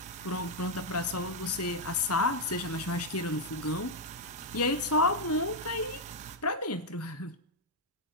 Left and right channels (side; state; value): both; normal; correlation -0.01